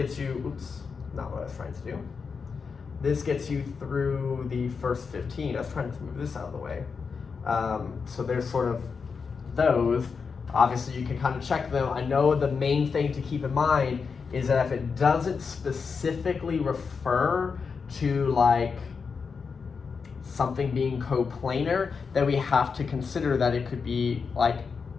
you, oops, not what I was trying to do. This gets you through the first 15. I was trying to move this out of the way. So there's sort of those. Obviously you can kind of check them. I know the main thing to keep in mind is that if it doesn't specifically refer to like something being coplanar, then we have to consider that it could be like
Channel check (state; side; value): quieter; right; 5.4 dB